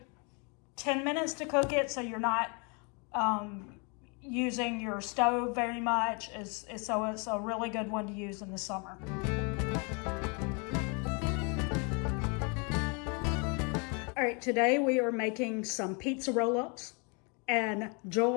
10 minutes to cook it, so you're not using your stove very much. So it's a really good one to use in the summer. All right, today we are making some pizza roll-ups, and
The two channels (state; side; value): quieter; right; 33.8 dB